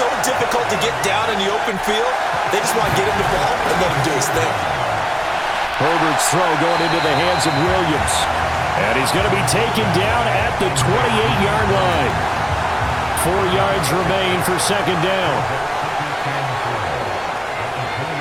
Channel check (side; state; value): both; identical; correlation 1.00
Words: difficult to get down in the open field. They just want to get him the ball and let him do his thing. Herbert's throw going into the hands of Williams. And he's going to be taken down at the 28-yard line. 4 yards remain for second down.